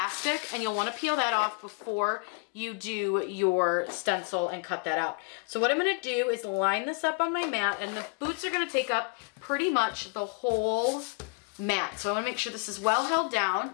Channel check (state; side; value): quieter; right; 34.1 dB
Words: and you'll want to peel that off before you do your stencil and cut that out. So what I'm going to do is line this up on my mat, and the boots are going to take up pretty much the whole mat. So I want to make sure this is well held down.